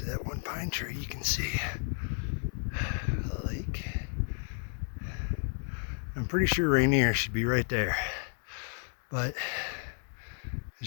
of that one pine tree, you can see a lake. I'm pretty sure Rainier should be right there, but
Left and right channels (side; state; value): right; silent; 56 dB below the other